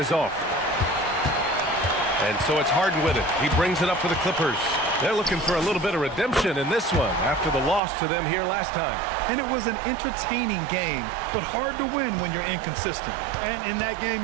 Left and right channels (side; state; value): left; drops out; at 7.8 s